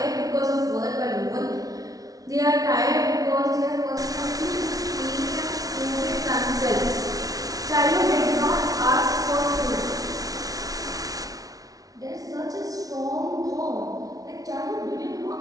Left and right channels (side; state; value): left; late; 0.18 ms